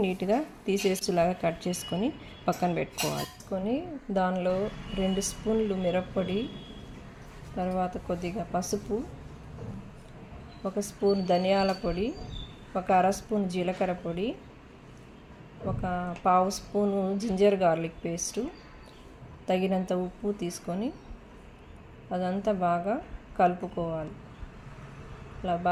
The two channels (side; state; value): both; identical; correlation 1.00